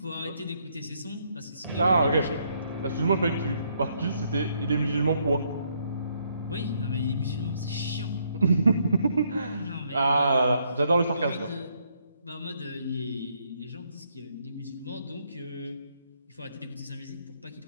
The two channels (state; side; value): inverted; both; correlation -0.72